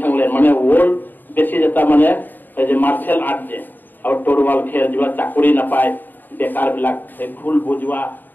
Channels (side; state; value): right; late; 0.090 ms